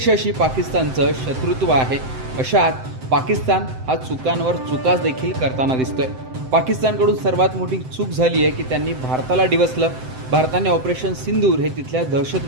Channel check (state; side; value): late; left; 7.8 ms